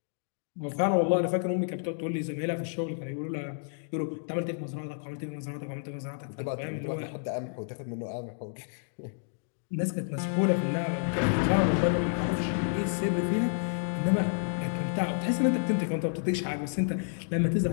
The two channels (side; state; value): right; silent; digital silence